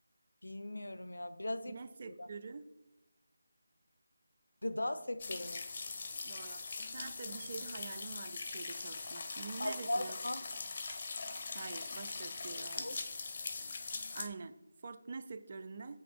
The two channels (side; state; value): both; inverted; correlation -0.93